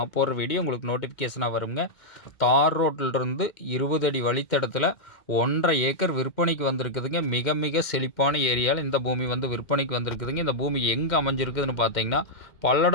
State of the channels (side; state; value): right; late; 2.1 ms